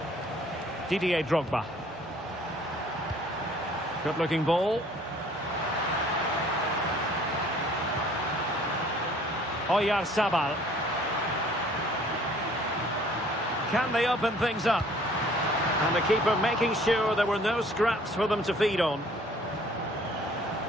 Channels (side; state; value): both; normal; correlation 0.55